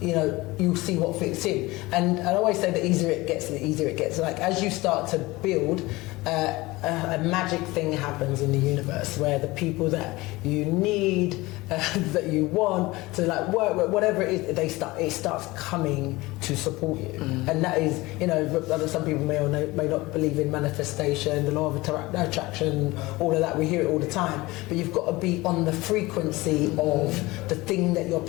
know, you'll see what fits in. And I always say the easier it gets, the easier it gets. Like, as you start to build, a magic thing happens in the universe, where the people that you need, that you want to like work with, whatever it is, it starts coming to support you. And that is, you know, some people may or may not believe in manifestation, the law of attraction, all of that. We hear it all the time, but you've got to be on the frequency of the thing that you're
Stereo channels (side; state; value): right; quieter; 20.9 dB